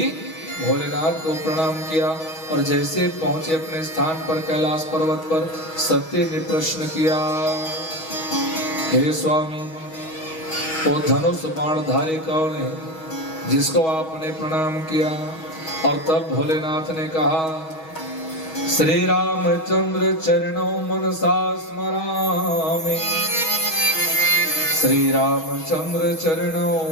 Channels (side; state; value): right; late; 6.3 ms